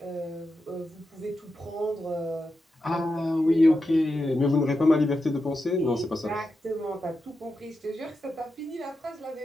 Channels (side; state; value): both; normal; correlation 0.88